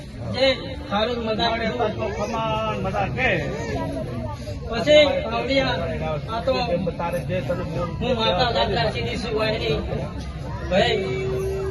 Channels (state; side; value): identical; both; correlation 1.00